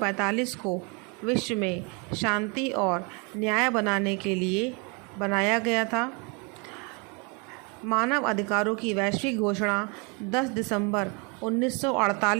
को विश्व में शांति और न्याय बनाने के लिए बनाया गया था। मानव अधिकारों की वैश्विक घोषणा 10 दिसंबर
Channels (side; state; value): left; quieter; 32.0 dB